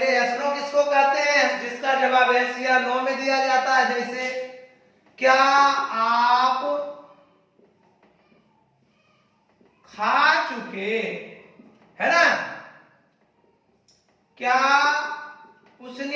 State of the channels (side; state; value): both; identical; correlation 1.00